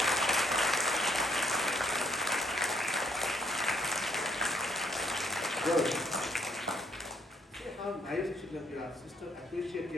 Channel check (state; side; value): normal; both; correlation 0.68